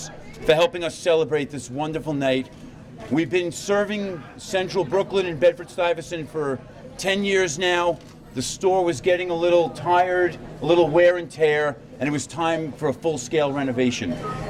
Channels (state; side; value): identical; both; correlation 1.00